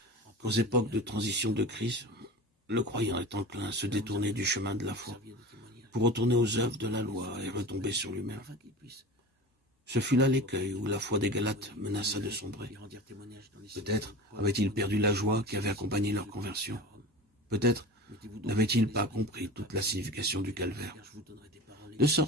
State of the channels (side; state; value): both; normal; correlation 0.33